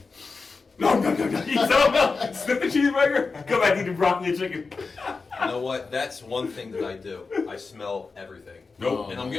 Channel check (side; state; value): right; quieter; 4.4 dB